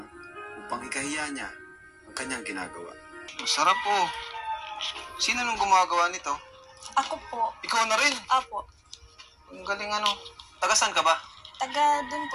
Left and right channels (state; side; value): identical; both; correlation 1.00